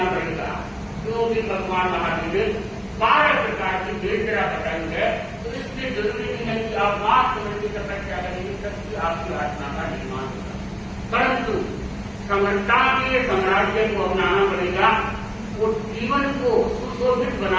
पड़ेगा। क्योंकि भगवान महावीर ने 12 प्रकार की वेदना बताई है, तो इसलिए जरूरी नहीं है कि आप मार्ग समझ की तपस्या करेंगे तभी आपकी आत्मा का निर्माण होगा, परंतु समर्था के साम्राज्य को अपनाना पड़ेगा और जीवन को सुशोभित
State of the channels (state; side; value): identical; both; correlation 1.00